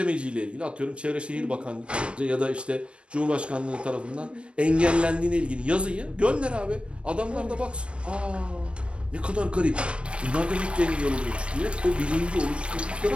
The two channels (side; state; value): left; late; 0.059 ms